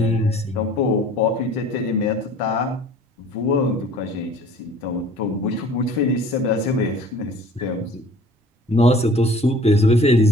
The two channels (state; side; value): normal; both; correlation 0.49